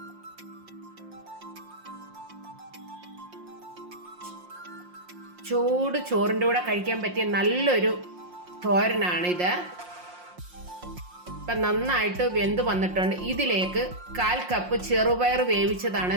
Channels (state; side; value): late; left; 5.6 ms